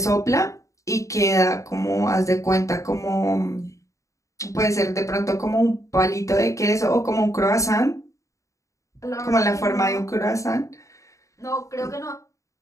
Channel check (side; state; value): right; late; 0.15 ms